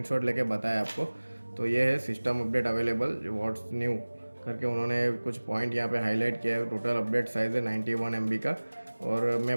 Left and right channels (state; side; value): inverted; both; correlation -1.00